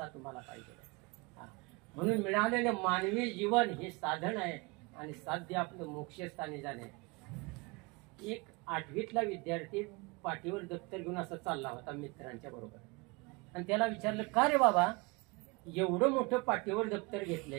तुम्हाला पाहिजे. म्हणून मिळालेलं मानवी जीवन हे साधन आहे आणि साध्य आपलं मोक्षस्थानी जाणे. एक 8वीतला विद्यार्थी पाठीवर दप्तर घेऊन असं चालला होता मित्रांच्या बरोबर. आणि त्याला विचारलं, का रे बाबा एवढं मोठं पाठीवर दप्तर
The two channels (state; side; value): quieter; left; 26.9 dB